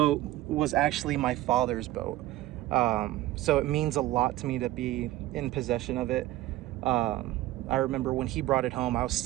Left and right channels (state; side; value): quieter; left; 16.0 dB